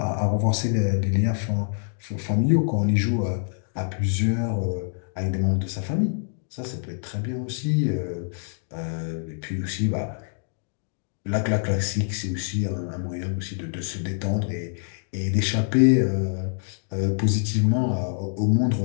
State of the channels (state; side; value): silent; right; digital silence